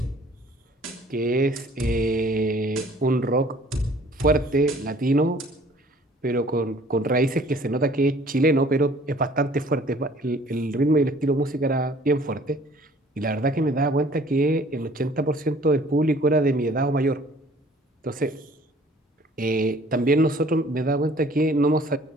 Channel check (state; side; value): normal; both; correlation 0.54